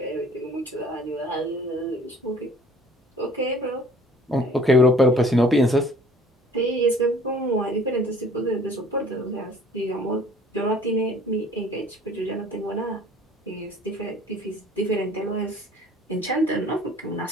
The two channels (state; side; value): normal; both; correlation 0.52